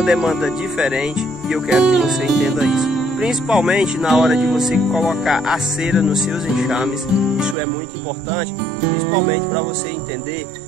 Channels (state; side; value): drops out; left; at 7.6 s